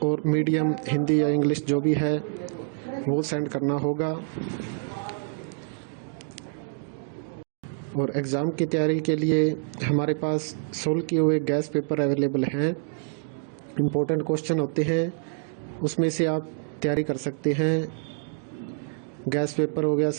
और मीडियम हिंदी या इंग्लिश जो भी है वो सेंड करना होगा। और एग्ज़ाम की तैयारी के लिए हमारे पास सोल्व किए हुए गैस पेपर अवेलेबल हैं। इम्पोर्टेंट क्वेश्चन होते हैं, उसमें से आप तैयारी कर सकते हैं। गैस पेपर हो गया,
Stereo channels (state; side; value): silent; left; 57 dB below the other